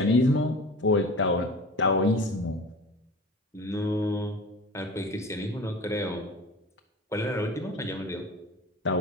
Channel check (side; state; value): both; normal; correlation 0.37